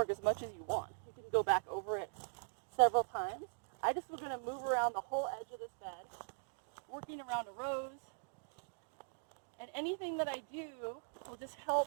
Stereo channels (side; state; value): left; silent; digital silence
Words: as much as you want. You can go back over it several times. I just was going to move around the whole edge of this bed, working around a rose. And anything that I do will just help